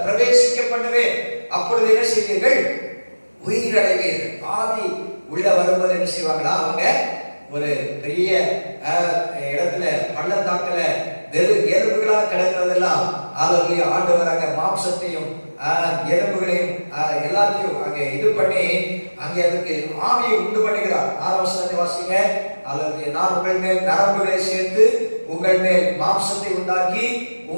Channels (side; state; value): both; inverted; correlation -1.00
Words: பிரவேசிக்க பண்ணுவேன், அப்பொழுது என்ன செய்வீர்கள்? உயிரடைவீர்கள். ஆவி உள்ள வரும்போது என்ன செய்வாங்களா? அவங்க ஒரு பெரிய இடத்துல பள்ளத்தாக்குல வெறும் எலும்புகளா கிடக்கிறதெல்லாம் அல்லேலூயா ஆண்டவர் அங்க மாம்சத்தையும் எலும்புகளையும் எல்லாத்தையும் அங்கே இது பண்ணி அங்கே அதுக்கு ஆவியை உண்டு பண்ணுகிறார். 6 வசனத்தை வாசிங்க. அல்லேலூயா. நான் உங்கள் மேல் நரம்புகளை சேர்த்து உங்கள் மேல் மாம்சத்தை உண்டாக்கி